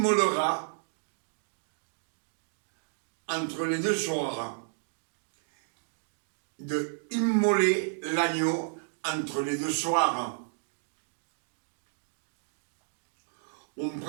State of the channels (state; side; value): silent; left; digital silence